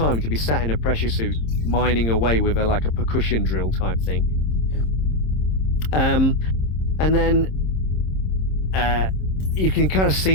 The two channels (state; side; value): late; right; 26 ms